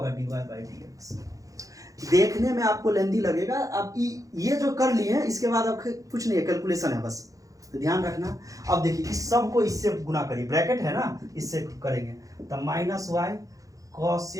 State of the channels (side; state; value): left; late; 0.16 ms